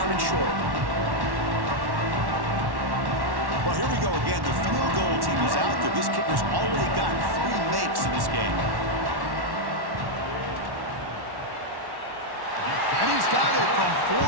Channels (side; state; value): left; late; 1.1 ms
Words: and short. Well, here we go again. The field goal team is out there. This kicker's already got 3 makes in this game. And he's got it from